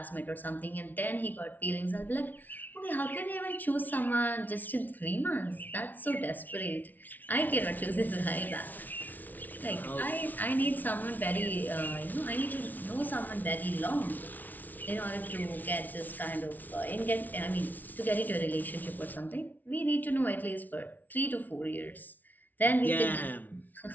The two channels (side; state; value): right; late; 0.081 ms